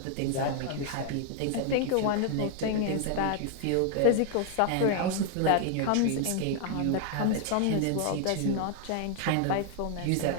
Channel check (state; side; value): different; both; correlation 0.00